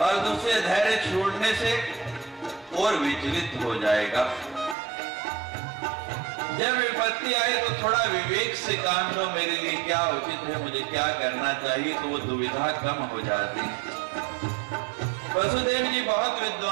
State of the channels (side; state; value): left; drops out; at 4.8 s